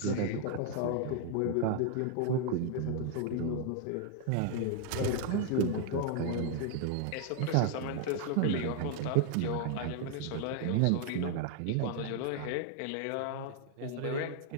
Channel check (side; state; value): both; different; correlation 0.00